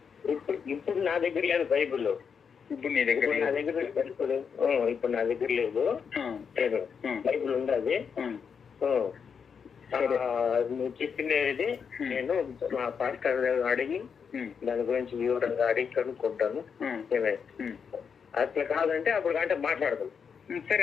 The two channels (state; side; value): quieter; right; 6.5 dB